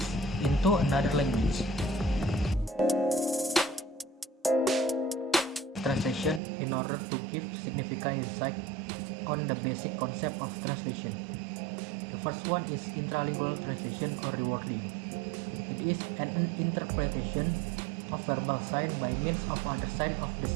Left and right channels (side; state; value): left; drops out; at 6.4 s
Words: into another language. Translation in order to give significant insight on the basic concept of translation. The first one is intralingual translation or rewording. It is an interpretation of verbal sign by means of other sign of the